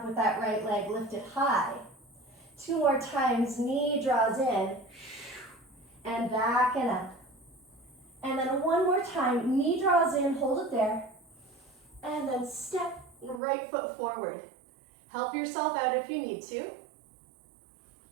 with that right leg lifted high. 2 more times, knee draws in, and back and up. And then 1 more time, knee draws in, hold it there, and then step right foot forward. Help yourself out if you need to.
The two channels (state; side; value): drops out; left; at 13.4 s